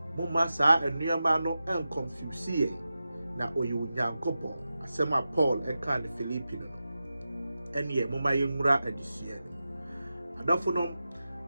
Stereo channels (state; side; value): inverted; both; correlation -0.93